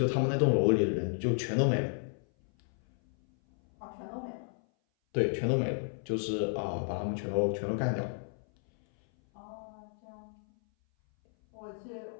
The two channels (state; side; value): silent; right; 56 dB below the other